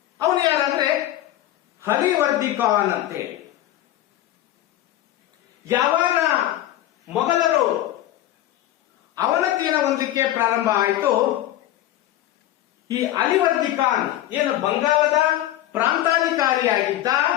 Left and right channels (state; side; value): quieter; right; 13.6 dB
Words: ಅವನು ಯಾರಂದ್ರೆ ಹಲಿವರ್ದಿ ಖಾನ್ ಅಂತೇಳಿ. ಯಾವಾಗ ಮೊಘಲರು ಅವನತಿಯನ್ನು ಹೊಂದಲಿಕ್ಕೆ ಪ್ರಾರಂಭ ಆಯಿತು, ಈ ಅಲಿವರ್ದಿ ಖಾನ್ ಏನು ಬಂಗಾಳದ ಪ್ರಾಂತಾಧಿಕಾರಿಯಾಗಿದ್ದ,